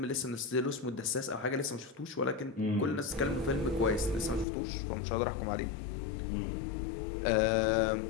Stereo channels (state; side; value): drops out; right; at 4.5 s